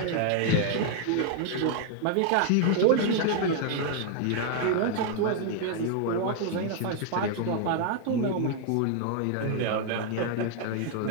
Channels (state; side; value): different; both; correlation 0.00